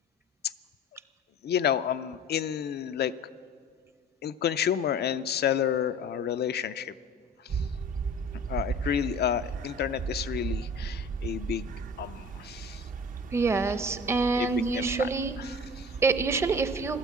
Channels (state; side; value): normal; both; correlation 0.40